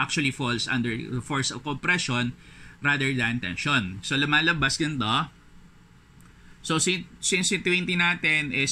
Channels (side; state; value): both; identical; correlation 1.00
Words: falls under the force of compression rather than tension. So, lumalabas ganito. So, since yung 20 natin